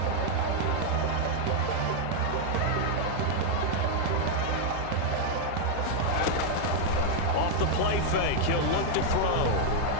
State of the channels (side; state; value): both; different; correlation 0.00